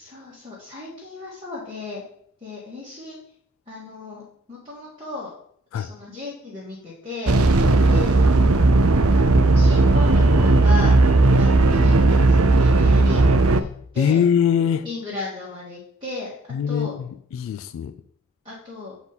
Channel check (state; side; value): normal; both; correlation 0.70